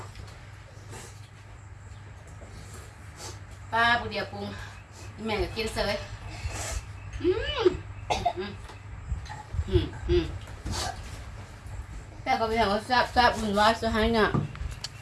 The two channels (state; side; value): identical; both; correlation 1.00